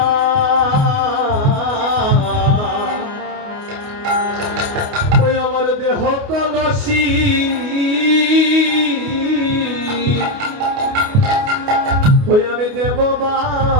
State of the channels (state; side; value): late; left; 29 ms